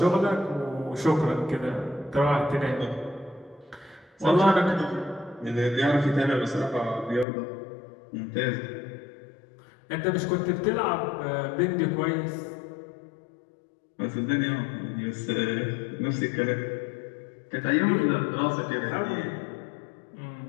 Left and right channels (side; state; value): right; drops out; at 7.2 s